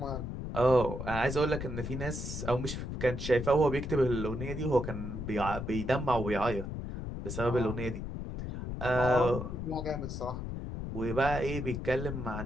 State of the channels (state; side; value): noise; left; rumble, 5 dB below the sound